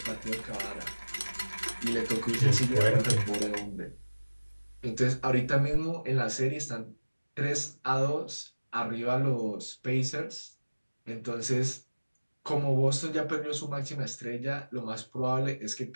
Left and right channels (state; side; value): inverted; both; correlation -1.00